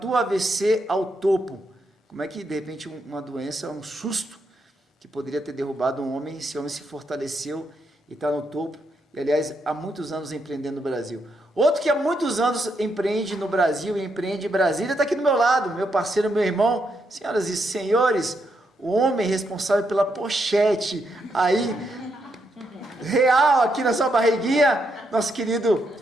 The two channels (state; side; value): normal; both; correlation 0.79